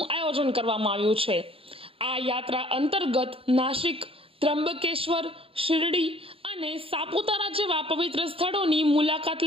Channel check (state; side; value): late; left; 0.27 ms